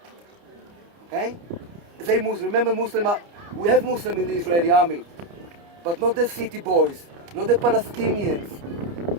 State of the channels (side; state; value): left; late; 29 ms